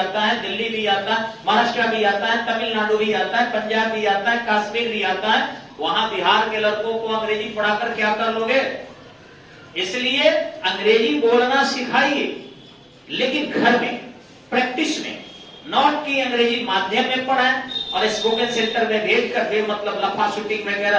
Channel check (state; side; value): identical; both; correlation 1.00